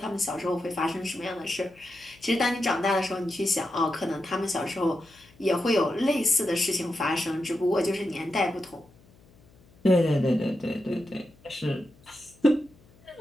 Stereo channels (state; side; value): noise; left; hum, 28 dB below the sound